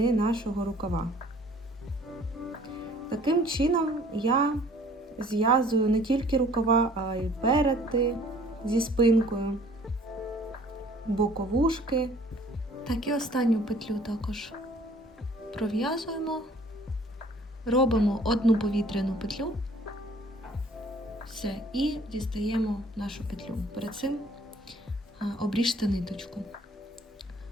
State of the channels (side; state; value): both; normal; correlation 0.54